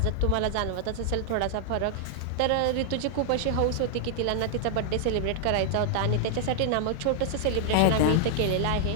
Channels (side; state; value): both; different; correlation 0.00